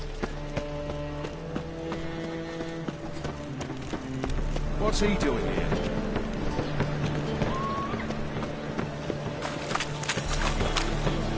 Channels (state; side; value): identical; both; correlation 1.00